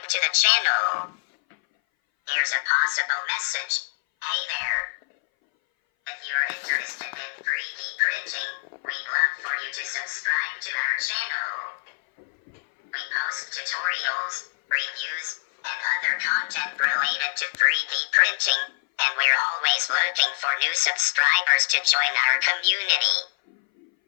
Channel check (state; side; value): silent; right; 59 dB below the other